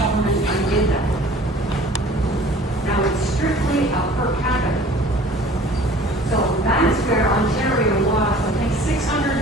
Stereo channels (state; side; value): normal; both; correlation 0.48